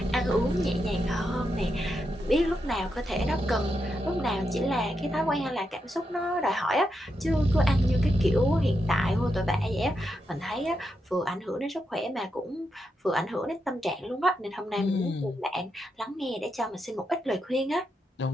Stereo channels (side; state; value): both; normal; correlation 0.84